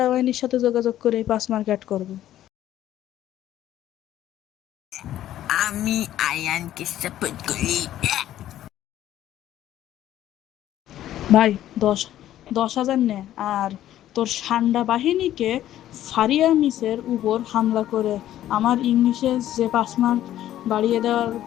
বাহিনীর সাথে যোগাযোগ করে 5 মার্ক অ্যাড করবো। আমি আয়ানকে সাপোর্ট করি। ভাই, 10,000 নে, আর তোর সান্ডা বাহিনীকে ফারিয়া মিসের উপর হামলা করে আমার ইংলিশে যে 5 মার্ক বাড়িয়ে দেওয়ার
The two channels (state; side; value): quieter; right; 12.6 dB